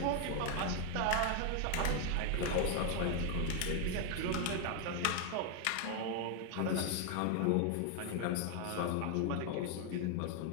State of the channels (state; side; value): different; both; correlation 0.00